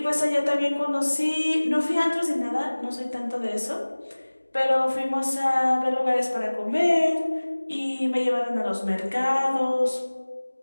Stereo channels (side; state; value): both; inverted; correlation -1.00